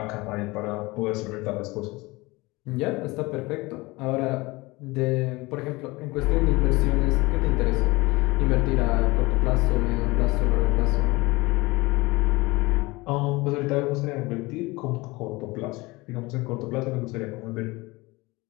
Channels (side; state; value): right; quieter; 22.6 dB